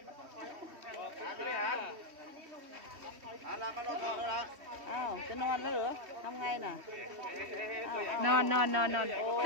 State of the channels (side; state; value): left; late; 3.1 ms